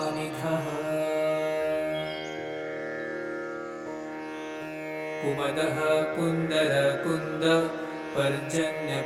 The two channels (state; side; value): identical; both; correlation 1.00